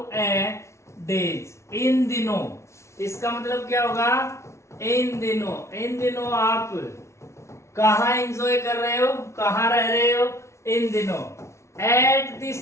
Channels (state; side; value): late; right; 0.13 ms